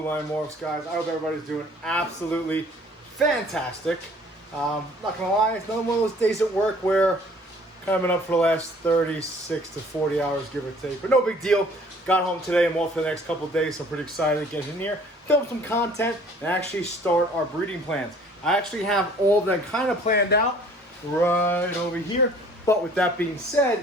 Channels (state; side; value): normal; both; correlation 0.54